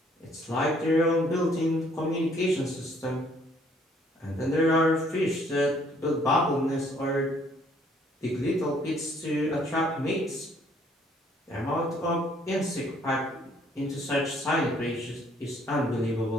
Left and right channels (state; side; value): normal; both; correlation 0.63